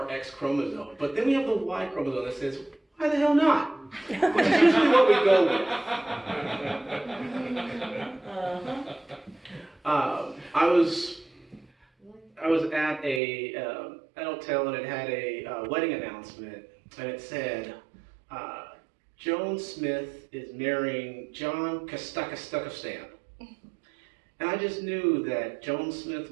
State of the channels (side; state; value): left; drops out; at 13.2 s